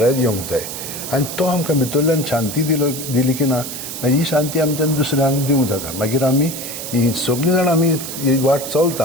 येवंक जाय आनी तो आमकां भितरल्यान शांती दिली की ना मागीर ही शांती आमच्यान दुसऱ्यांक दिवंक जाता. मागीर आमी ही सगळीं जाणां आमी ही वाट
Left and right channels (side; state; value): right; noise; hiss, 8 dB below the sound